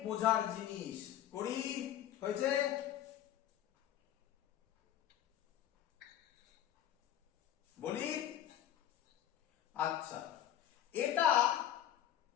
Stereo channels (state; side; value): quieter; right; 11.6 dB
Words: বোঝার জিনিস। করি হয়েছে? বলি আচ্ছা, এটা